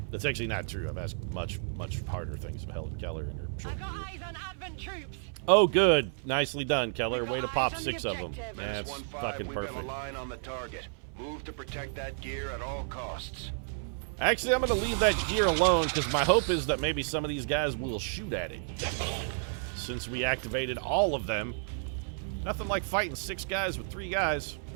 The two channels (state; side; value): silent; left; 57 dB below the other